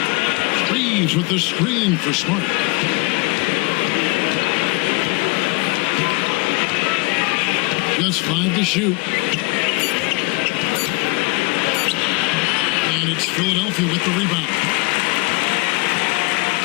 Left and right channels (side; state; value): right; quieter; 26.5 dB